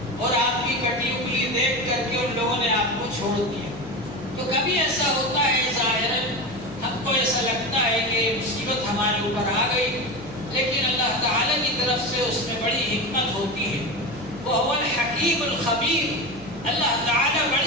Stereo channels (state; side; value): noise; left; hum, 18 dB below the sound